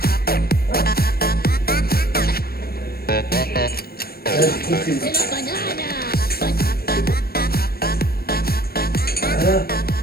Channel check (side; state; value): right; late; 0.44 ms